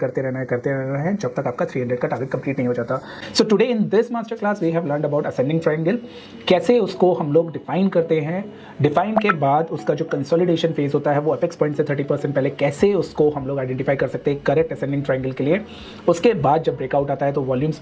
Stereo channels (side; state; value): both; identical; correlation 1.00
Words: रहना है, करते रहना है जब तक आपका 300 का टारगेट कंप्लीट नहीं हो जाता। So today in this master class we have learned about ascending triangle, कैसे उसको हम लोग डिफाइन करते हैं, डिफाइन के बाद उसका जो कंसोलिडेशन फेज होता है वो अपेक्स पॉइंट से 30% पहले कैसे उसको हम लोग आइडेंटिफाई कर सकते हैं करेक्ट असेंडिंग ट्रायंगल के लिए। उसके बाद जब ब्रेकआउट आता है तो वॉल्यूम्स